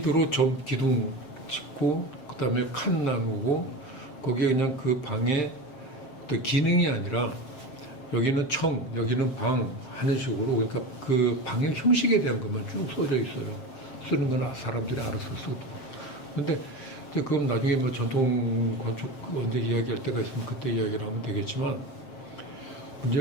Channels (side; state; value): right; late; 7.6 ms